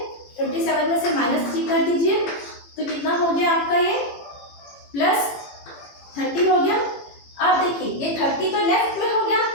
27 में से -3 कर दीजिए, तो कितना हो गया आपका ये +30 हो गया। अब देखिए ये 30 तो लेफ्ट में हो गया,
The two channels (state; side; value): late; right; 18 ms